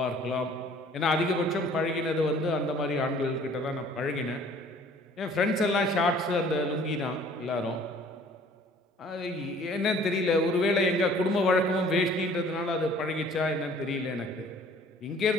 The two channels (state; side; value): normal; both; correlation 0.54